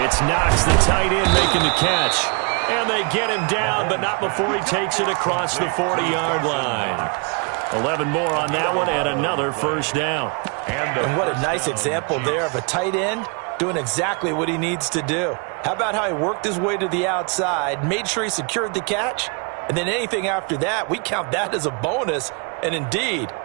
It's Knox, the tight end, making the catch. And they get him down, but not before he takes it across the 40-yard line. 11 more on that one, and another first down. And what a nice example there of a tight end doing exactly what he needs to do. How about how he worked his way to the outside, made sure he secured the catch, and then anything after that, we count that as a bonus. And indeed,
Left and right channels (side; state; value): left; quieter; 34.7 dB